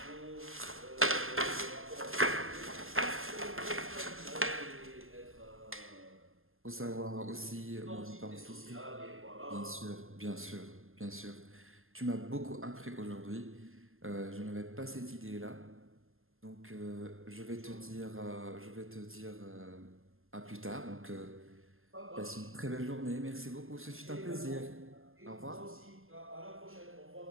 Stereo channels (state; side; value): late; left; 0.60 ms